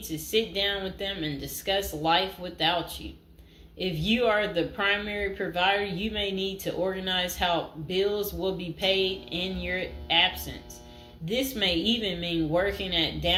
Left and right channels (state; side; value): identical; both; correlation 1.00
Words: to sit down with them and discuss life without you. If you are the primary provider, you may need to organize how bills will be paid in your absence. This may even mean working at